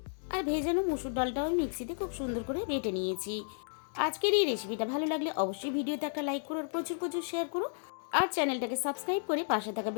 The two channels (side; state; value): right; silent; digital silence